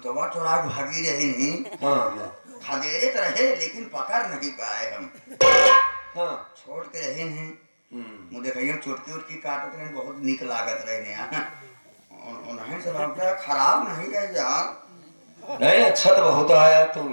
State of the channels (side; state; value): both; inverted; correlation -1.00